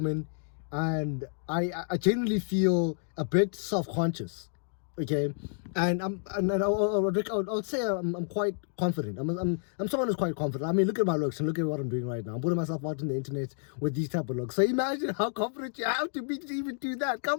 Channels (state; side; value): silent; right; digital silence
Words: And I genuinely feel a bit self-conscious, okay? And I'll say I'm quite confident. I'm someone who's quite confident. I mean, look at my looks and look at what I'm doing right now. I'm putting myself out on the internet with these type of looks. So imagine how confident you have to be to even do that.